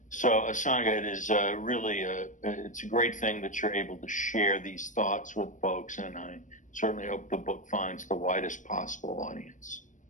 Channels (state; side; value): late; right; 0.37 ms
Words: So, Asanga, it is really it's a great thing that you're able to share these thoughts with folks, and I certainly hope the book finds the widest possible audience.